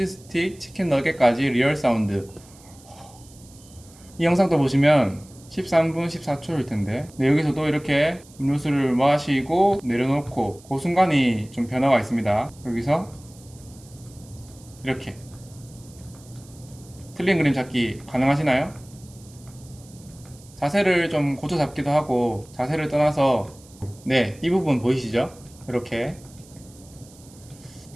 스틱, 치킨 너겟까지 리얼 사운드. 이 영상도 보시면 13분 14초일 텐데 여기서도 이렇게 음료수를 마시고 내려놓고 그 순간이 좀 변화가 있습니다. 여기서 이렇게 틀린 그림 찾기 가능하시나요? 자세를 좀 고쳐 잡기도 하고 자세를 떠나서 네, 이 부분 보이시죠? 이렇게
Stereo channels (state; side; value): noise; right; hiss, 24 dB below the sound